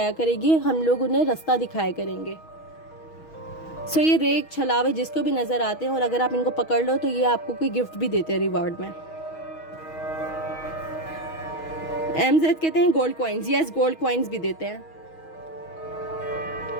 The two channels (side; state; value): right; late; 6.3 ms